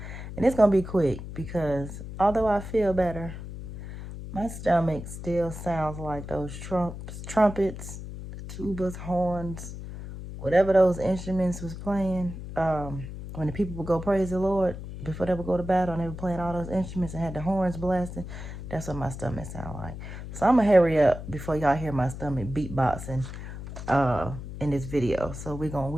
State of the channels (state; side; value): noise; left; hum, 10 dB below the sound